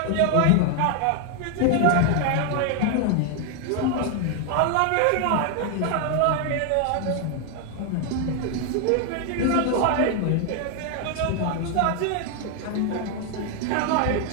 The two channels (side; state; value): both; different; correlation 0.01